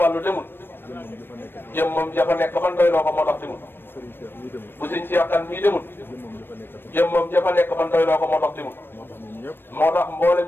demul jëmmam jafa nekk ban doyloo ko moo tax demul bu sëñ Cheikh Kane mii demul jëmmam jafa nekk ban doyloo ko moo tax demul moo tax mboolem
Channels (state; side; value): late; right; 0.099 ms